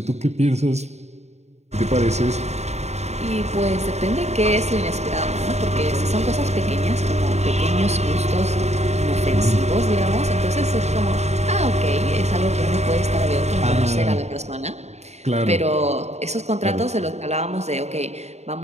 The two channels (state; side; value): late; left; 0.32 ms